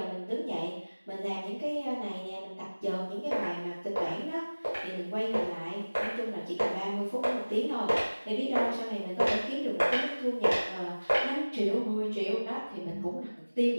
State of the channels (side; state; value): both; inverted; correlation -1.00